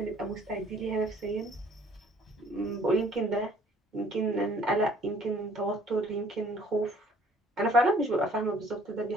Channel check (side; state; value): both; normal; correlation 0.57